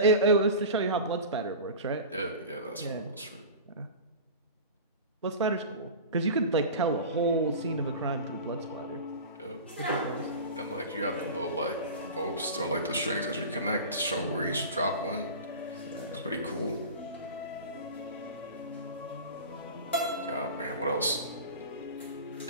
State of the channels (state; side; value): inverted; both; correlation -0.32